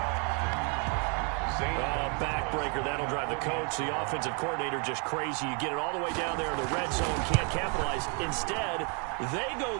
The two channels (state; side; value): quieter; left; 36.0 dB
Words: Backbreaker, that'll drive the coach, the offensive coordinator, just crazy. You get it all the way down there in the red zone, can't capitalize. Instead, they go